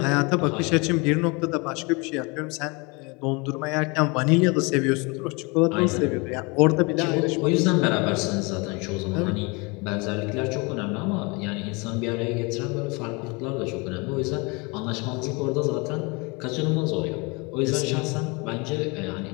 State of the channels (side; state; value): right; quieter; 28.4 dB